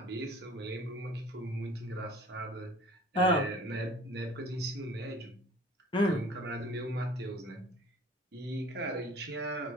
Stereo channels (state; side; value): normal; both; correlation 0.47